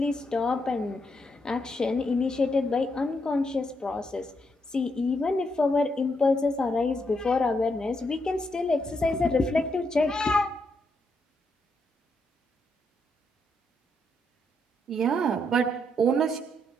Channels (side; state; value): both; normal; correlation 0.79